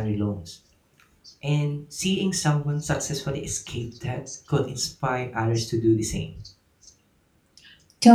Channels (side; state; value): both; identical; correlation 1.00